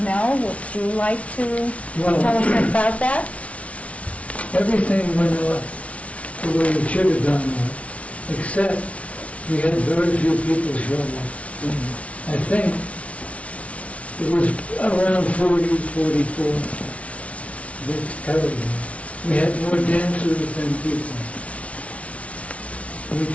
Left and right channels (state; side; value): late; right; 0.064 ms